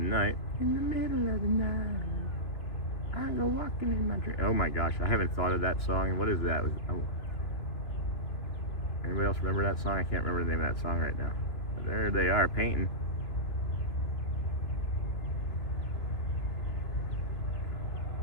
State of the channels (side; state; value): right; late; 2.9 ms